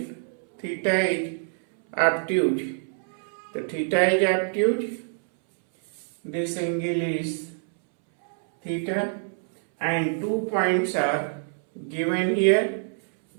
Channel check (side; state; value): left; silent; 61 dB below the other